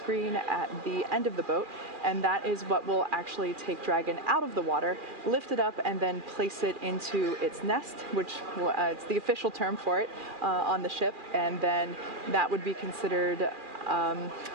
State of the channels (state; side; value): late; left; 2.4 ms